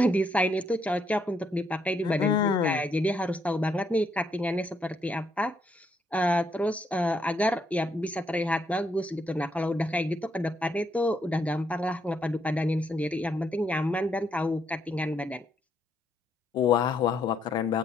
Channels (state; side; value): normal; both; correlation 0.74